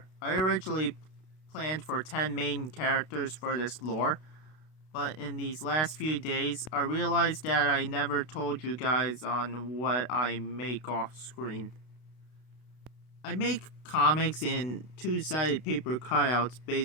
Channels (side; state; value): right; late; 32 ms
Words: I originally planned for 10 main characters for this lore, but in these last few days, I realized that I never told you guys on what I make off screen. I make comics in two-sided paper cutouts